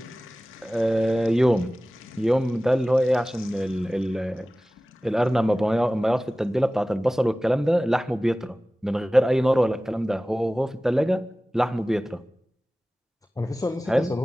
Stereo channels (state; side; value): normal; both; correlation 0.97